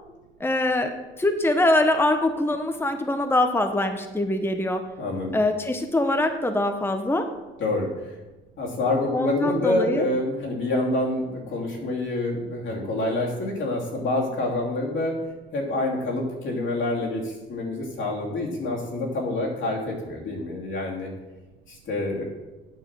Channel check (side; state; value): right; noise; rumble, 30 dB below the sound